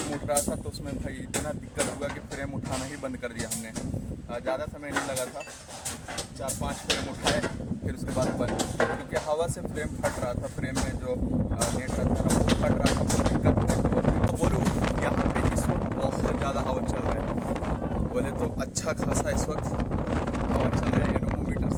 था तो उसमें भाई इतना दिक्कत हुआ कि फ्रेम उठाना ही बंद कर दिया हमने। ज़्यादा समय नहीं लगा था, 4-5 फ्रेम उठाए, फिर उसके बाद बंद, क्योंकि हवा से फ्रेम फट रहा था। फ्रेम में जो नेट रहता था वो फट रहा था, बहुत दिक्कत। तो बोलो यहाँ पे इस वक्त बहुत ज़्यादा हवा चल रहा है। बोले तो अच्छा खासा इस वक्त हवा चल रहा है। एनोमीटर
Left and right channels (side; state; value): both; identical; correlation 1.00